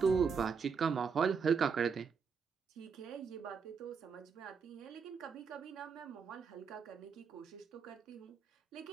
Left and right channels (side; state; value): left; quieter; 5.9 dB